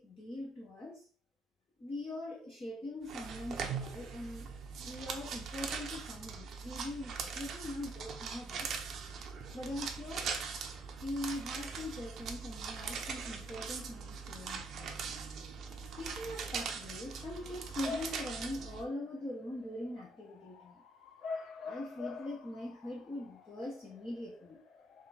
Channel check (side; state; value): both; normal; correlation 0.70